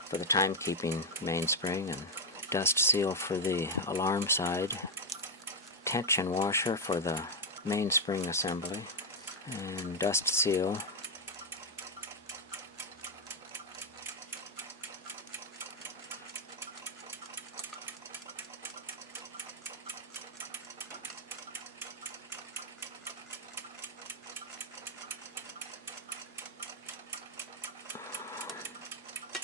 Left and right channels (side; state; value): both; normal; correlation 0.02